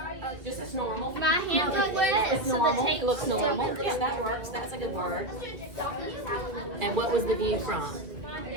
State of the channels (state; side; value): late; left; 2.0 ms